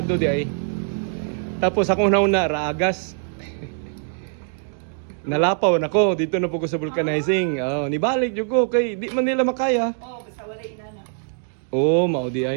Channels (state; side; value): silent; left; 64 dB below the other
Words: di ay. Tapos akong nauna raagas. Nalapaw na ko dito na po ko sa vulcanizing. Nibalik jud ko kay di man nila makaya. Basta wala inana. Mao di